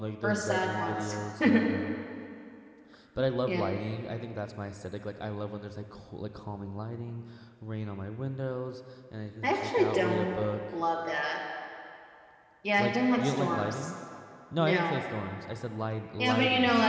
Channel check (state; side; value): identical; both; correlation 1.00